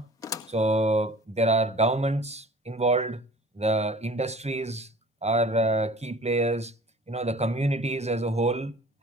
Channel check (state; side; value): normal; both; correlation 0.46